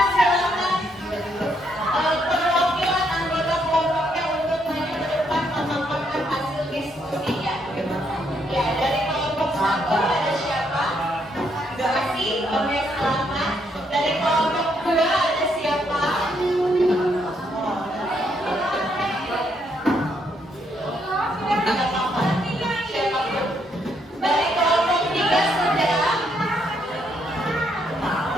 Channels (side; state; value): both; normal; correlation 0.74